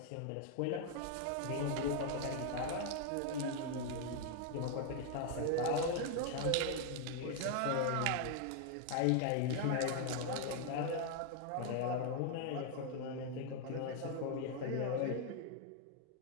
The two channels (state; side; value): different; both; correlation 0.01